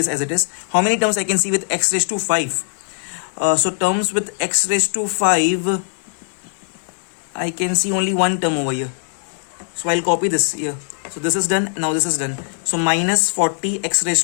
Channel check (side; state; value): right; silent; digital silence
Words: as it is. How many terms I can see with x raised to 5? So terms with x raised to 5, I can see only one term over here. So I'll copy this here. So this is done. Now this is done. So minus 40 x